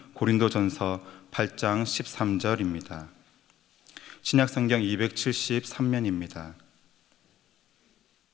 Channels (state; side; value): quieter; right; 12.5 dB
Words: 고린도전서 8장 13절입니다. 신약성경 273면입니다.